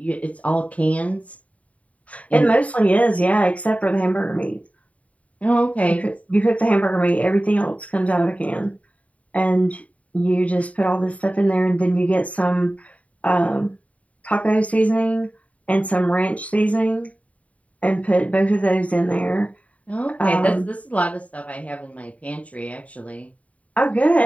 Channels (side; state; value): right; late; 0.068 ms